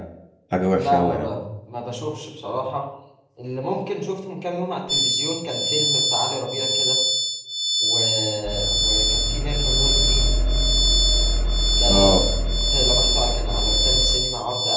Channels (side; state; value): both; identical; correlation 1.00